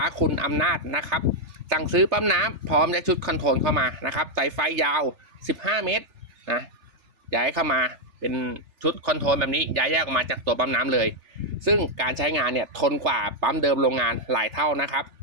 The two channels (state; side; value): late; left; 3.4 ms